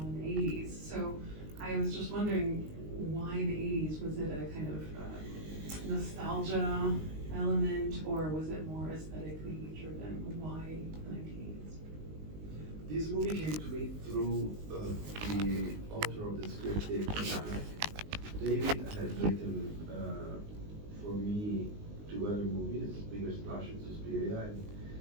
in the 80s. So I was just wondering why the 80s? Was it a kind of nostalgia element, or was it more aesthetically driven? Why the 1980s? This movie came to me through the author of the script, David Rhinebeck. David has written for me 2 other movies, Bigger Splash and Suspiria, and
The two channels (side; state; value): left; late; 19 ms